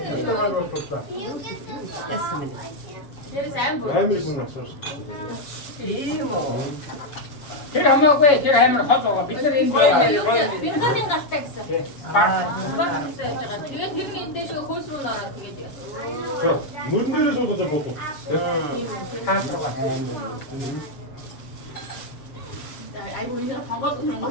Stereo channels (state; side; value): late; right; 7.1 ms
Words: Амир хүн асуусан. Тэр хамаагүй тэр амир хол байгаа. Бид нар энэ Бинхатын галтаа гэсэн. Тэгээд тэр нь эндээ шүү хөөс рүү нөрөө тэгээд. Мөрөн дээрээ суудаж буудуу. хаалгаа. 아이고 이제 방법도